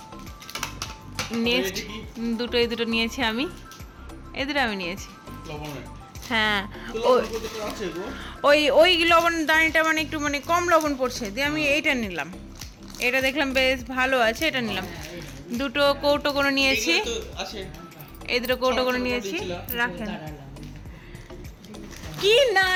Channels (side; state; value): both; identical; correlation 1.00